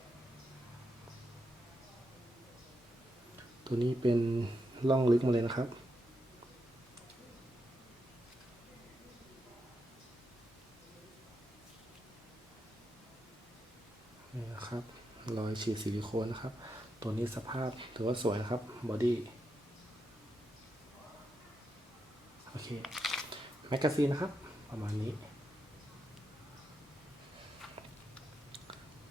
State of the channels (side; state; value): both; normal; correlation 0.84